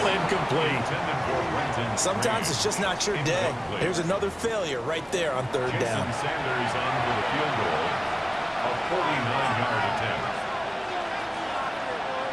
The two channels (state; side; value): identical; both; correlation 1.00